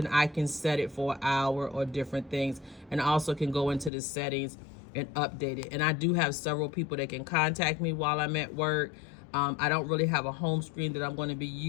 I can set it for an hour or different things. And I also can go into the settings and update it. And I do have several people that can contact me while I'm at work. I don't really have a home screen that I'm going to be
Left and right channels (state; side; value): drops out; right; at 3.9 s